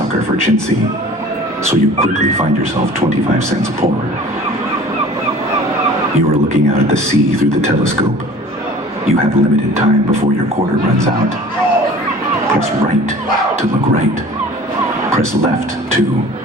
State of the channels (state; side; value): normal; both; correlation 0.45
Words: for chintzy, so you quickly find yourself 25 cents poorer. You are looking out at the sea through the telescope. You have limited time before your quarter runs out. Press right to look right. Press left to,